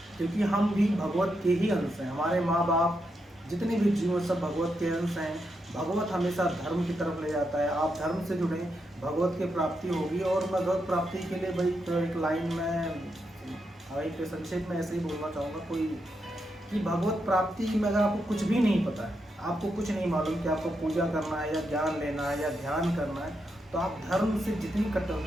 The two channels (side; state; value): both; normal; correlation 0.83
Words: क्योंकि हम भी भगवत के ही अंश हैं। हमारे माँ बाप, जितने भी जीव सब भगवत के अंश हैं। भगवत हमेशा धर्म की तरफ ले जाता है। आप धर्म से जुड़े, भगवत की प्राप्ति होगी। और मैं भगवत प्राप्ति के लिए भाई तो एक लाइन में भाई पे संक्षेप में ऐसे ही बोलना चाहूँगा कोई कि भगवत प्राप्ति में अगर आपको कुछ भी नहीं पता है, आपको कुछ नहीं मालूम कि आपको पूजा करना है या ज्ञान लेना है या ध्यान करना है, तो आप धर्म से जितनी